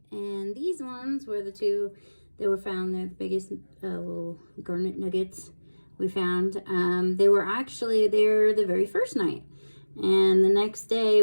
and these ones were the two that were found. They're the biggest little garnet nuggets we found. They were actually there the very first night. And the next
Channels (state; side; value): inverted; both; correlation -1.00